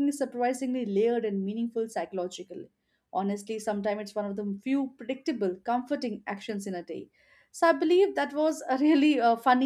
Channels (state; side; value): identical; both; correlation 1.00